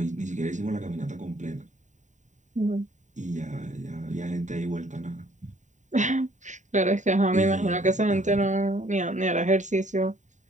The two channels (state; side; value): late; left; 0.35 ms